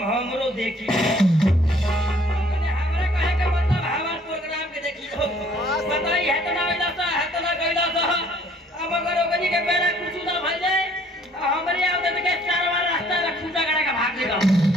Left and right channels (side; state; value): both; normal; correlation 0.59